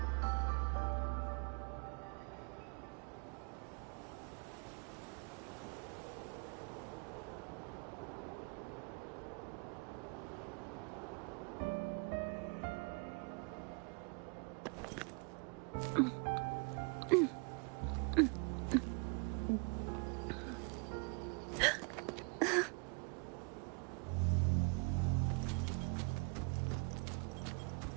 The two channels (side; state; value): left; quieter; 34.8 dB